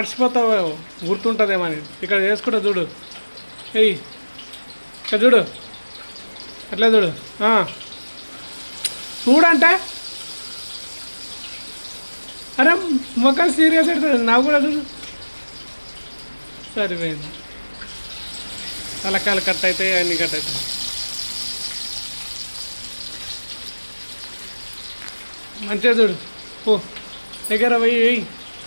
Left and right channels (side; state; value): both; inverted; correlation -1.00